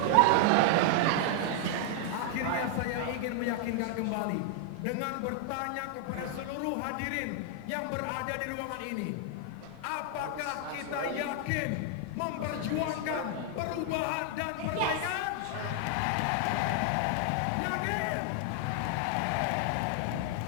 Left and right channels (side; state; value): both; different; correlation 0.00